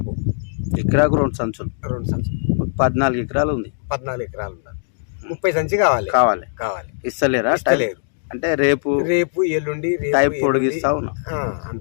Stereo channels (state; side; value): silent; right; digital silence